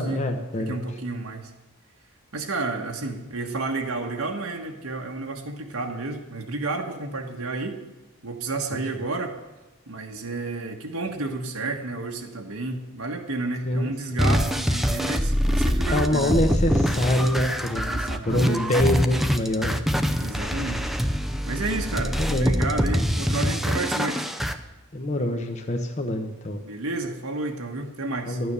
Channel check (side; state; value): both; normal; correlation 0.68